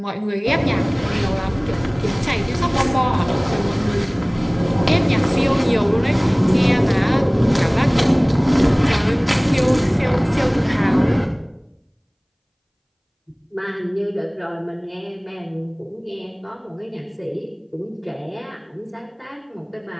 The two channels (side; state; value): both; identical; correlation 1.00